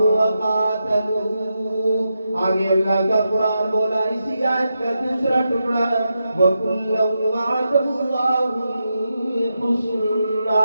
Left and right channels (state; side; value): inverted; both; correlation -0.87